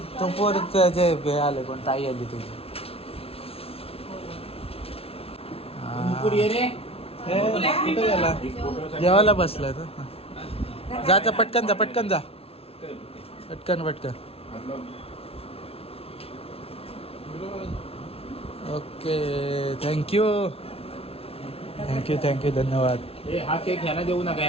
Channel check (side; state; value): right; late; 0.28 ms